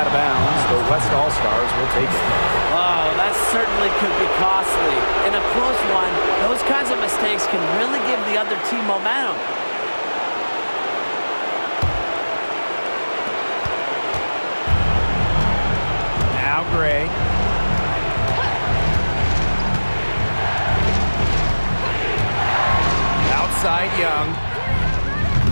of bounds, the West All-Stars will take it. Oh, that certainly could be costly. In a close one, those kinds of mistakes can really give the other team momentum. Now Gray. Outside Young.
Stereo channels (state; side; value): inverted; both; correlation -1.00